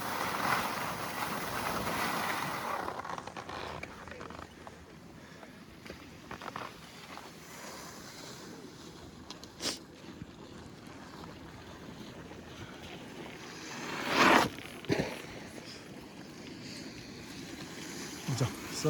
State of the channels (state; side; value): identical; both; correlation 1.00